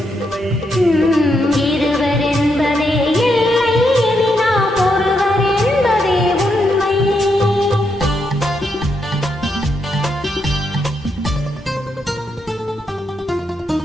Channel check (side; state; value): both; normal; correlation 0.80